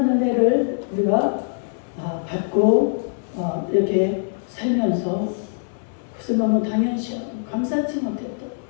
은혜를 우리가 받고 이렇게 살면서 그것을 너무 당연시 감사치 못했던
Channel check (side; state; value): right; silent; 64 dB below the other